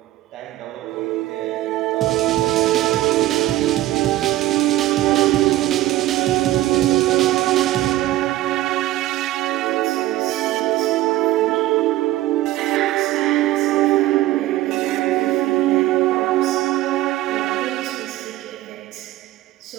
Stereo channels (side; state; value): left; quieter; 15.9 dB